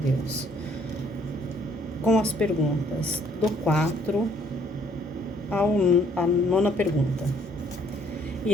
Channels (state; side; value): normal; both; correlation 0.64